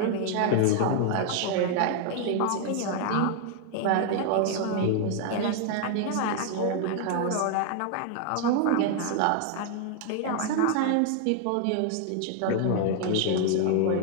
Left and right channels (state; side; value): different; both; correlation 0.00